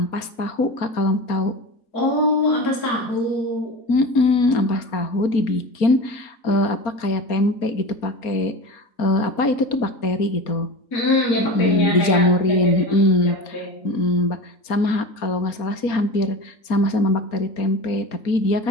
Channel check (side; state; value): right; late; 4.3 ms